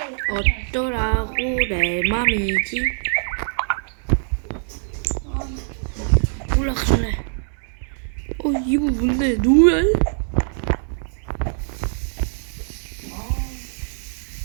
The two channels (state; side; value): silent; left; digital silence